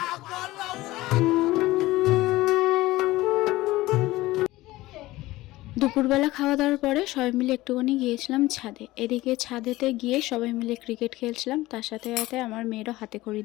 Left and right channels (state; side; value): quieter; right; 18.2 dB